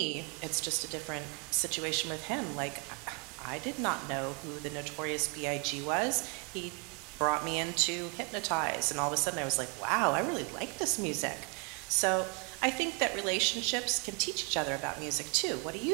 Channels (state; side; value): quieter; left; 33.6 dB